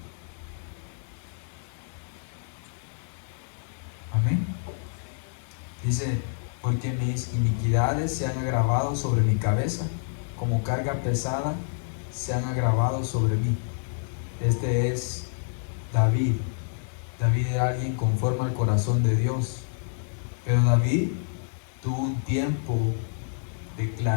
Amén. Dice, porque mis iniquidades se han agravado sobre mi cabeza, como carga pesada se han agravado sobre mí. Este es David. David era alguien conforme al corazón de Dios. Pero David tuvo un tiempo de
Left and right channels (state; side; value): silent; right; 59 dB below the other